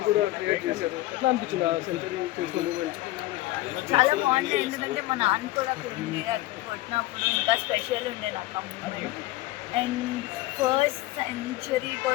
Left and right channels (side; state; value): right; quieter; 17.9 dB